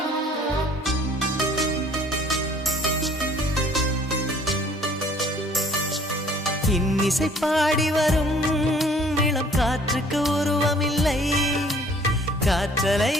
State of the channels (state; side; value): normal; both; correlation 0.56